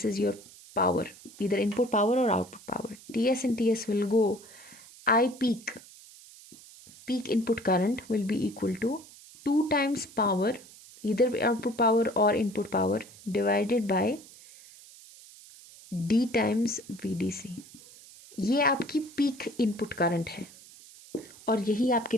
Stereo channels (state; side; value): noise; right; hiss, 21 dB below the sound